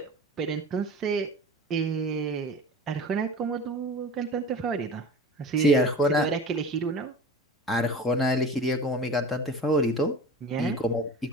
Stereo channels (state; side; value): normal; both; correlation 0.36